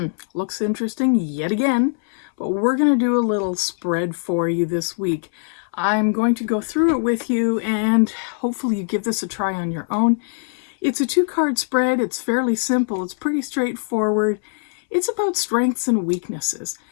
looks interesting yet again, but we're going to do a little spread for you this week. I'm going to go through it with you and hopefully you give this a try on your own. It's a 2-card spread. It's fairly simple. It's pretty straightforward. It's about strengths and weaknesses.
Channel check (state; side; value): silent; right; 62 dB below the other